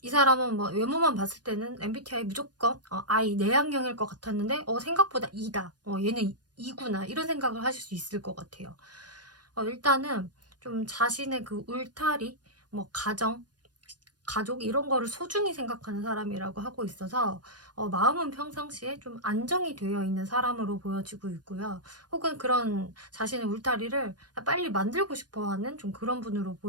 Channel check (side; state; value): left; late; 0.69 ms